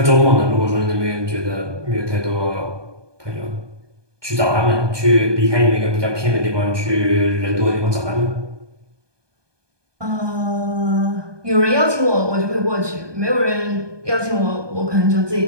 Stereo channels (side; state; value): left; late; 1.2 ms